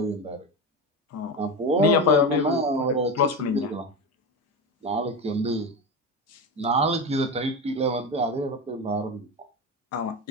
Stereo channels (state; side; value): normal; both; correlation 0.20